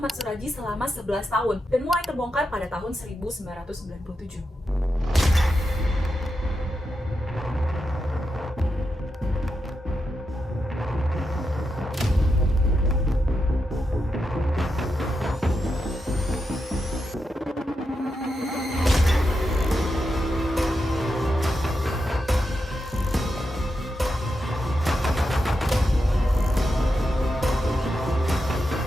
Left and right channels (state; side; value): normal; both; correlation 0.86